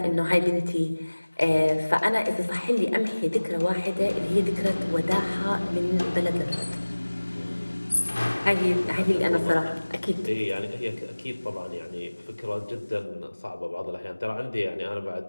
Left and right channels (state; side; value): inverted; both; correlation -1.00